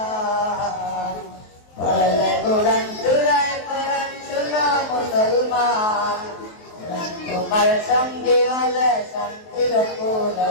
পড়লে কুরআন জুড়ায় পরাণ শুনো মুসলমান তোমার সঙ্গে হলে শান্তির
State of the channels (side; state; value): right; late; 23 ms